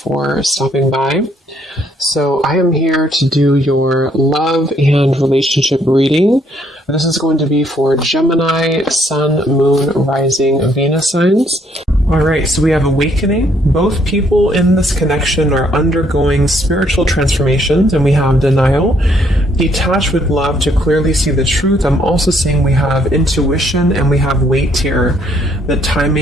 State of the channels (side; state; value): both; normal; correlation 0.68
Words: stopping by. So I am here to do your love and relationship reading. This is going to be for Gemini, Sun, Moon, Rising, Venus signs. All right, so we have awakening. Both people in this connection are undergoing spiritual transformations, and we have denial. Detached with love to clearly see the truth. I'm also seeing we have intuition and we have weight here. The